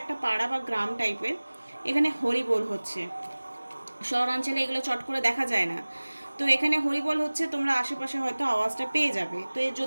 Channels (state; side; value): inverted; both; correlation -1.00